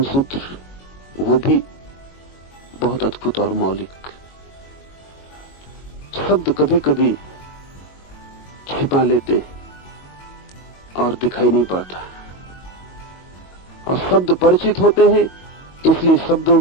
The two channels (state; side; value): late; right; 22 ms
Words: सूत्र, वो भी बहुत अद्भुत और मौलिक। शब्द कभी कभी छिपा लेते और दिखाई नहीं पड़ता, और शब्द परिचित होते हैं, इसलिए शब्दों